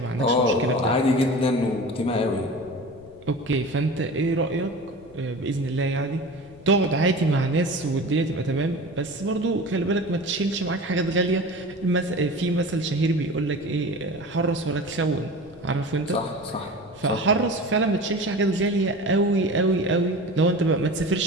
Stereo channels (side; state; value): left; noise; rumble, 24 dB below the sound